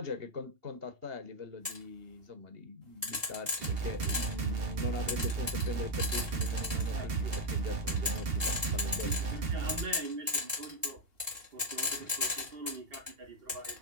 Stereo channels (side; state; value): left; late; 2.8 ms